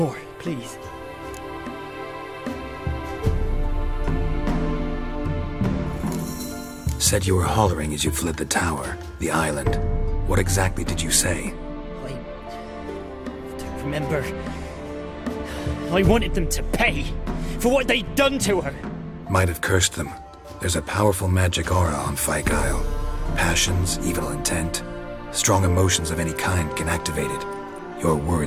please. Said you were hollering as you fled the tower, the island. What exactly did you say? I don't remember. I wanted them to pay for what they'd done to her. Might have cursed them. There's a powerful magic aura on Fyke Isle. Passions, evil intent, strong emotions of any kind can activate it. Your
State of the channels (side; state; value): both; identical; correlation 1.00